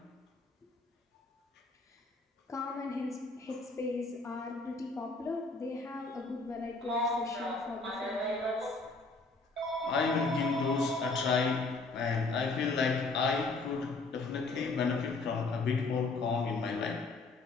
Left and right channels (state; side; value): quieter; right; 3.6 dB